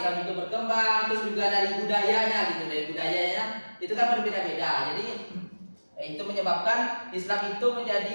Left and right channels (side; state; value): both; inverted; correlation -1.00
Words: itu berkembang, terus juga dari budayanya gitu, dari budayanya itu kan berbeda-beda. Jadi itu menyebabkan Islam itu